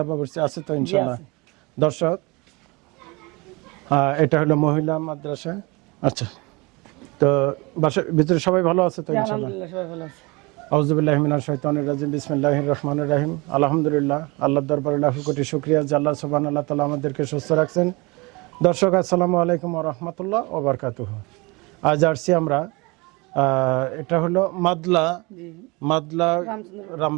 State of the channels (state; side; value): quieter; left; 25.8 dB